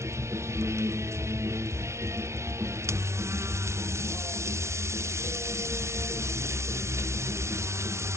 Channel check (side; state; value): left; late; 0.13 ms